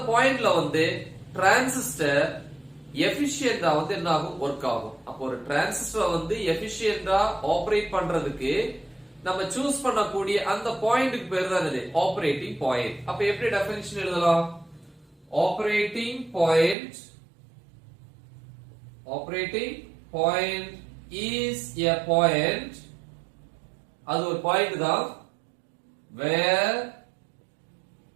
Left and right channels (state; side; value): drops out; left; at 16.8 s